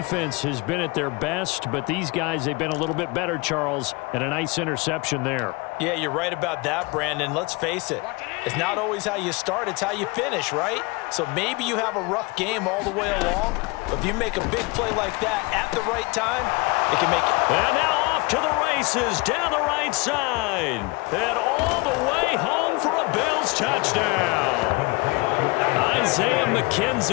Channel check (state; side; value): quieter; right; 25.7 dB